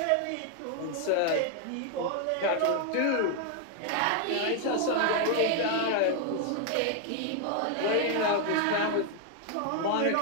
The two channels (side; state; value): both; different; correlation 0.00